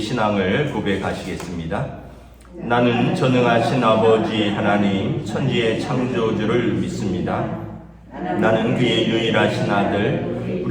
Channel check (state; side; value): identical; both; correlation 1.00